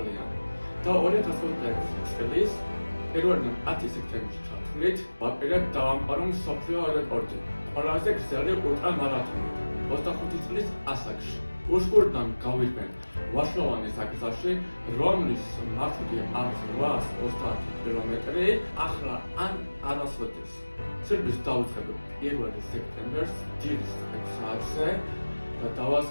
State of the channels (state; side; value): inverted; both; correlation -1.00